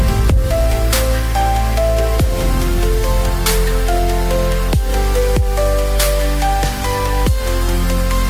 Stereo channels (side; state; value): both; identical; correlation 1.00